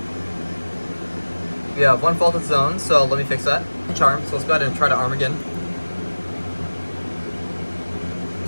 We have one faulted zone, so let me fix that. Charm, so let's go ahead and try to arm again.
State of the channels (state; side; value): inverted; both; correlation -1.00